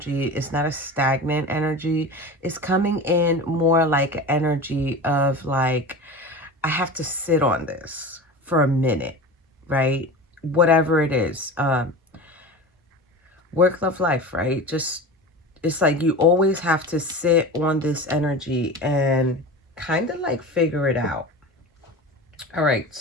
it's not a stagnant energy. It's coming in more like energy of like, I have to sit on this for a minute, right? Whatever it is. Work, love, life, right? Just, it's like you always have to sit on this energy and kind of like figure it out. All right,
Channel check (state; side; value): normal; both; correlation 0.31